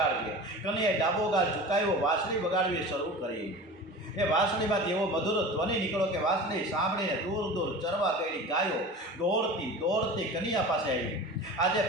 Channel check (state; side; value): normal; both; correlation 0.35